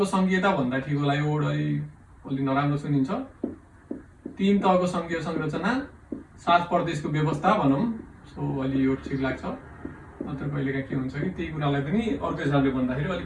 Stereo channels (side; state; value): both; identical; correlation 1.00